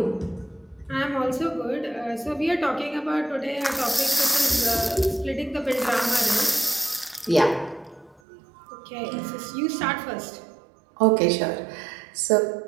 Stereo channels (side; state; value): left; drops out; at 8.2 s